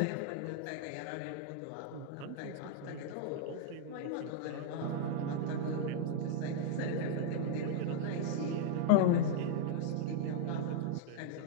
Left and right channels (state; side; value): different; both; correlation -0.01